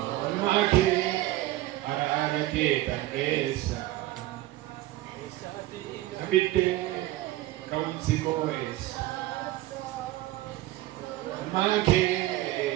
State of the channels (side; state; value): left; quieter; 16.3 dB